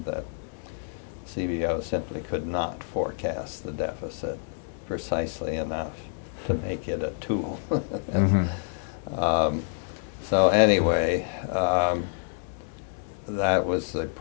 that CBO simply could not forecast the deficit precisely enough to make it a tool. Mm-hmm. So anyway, that was the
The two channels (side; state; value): right; silent; 60 dB below the other